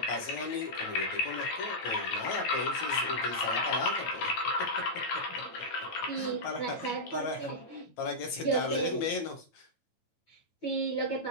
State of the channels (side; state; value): right; late; 9.0 ms